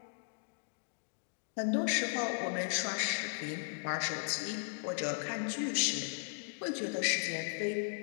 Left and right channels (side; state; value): right; silent; digital silence